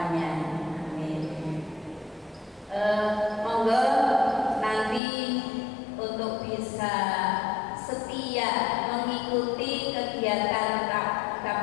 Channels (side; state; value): right; drops out; at 5.0 s